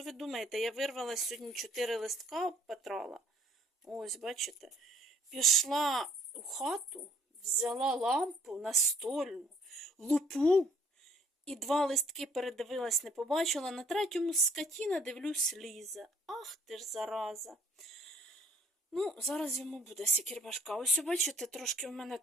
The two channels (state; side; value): normal; both; correlation 0.58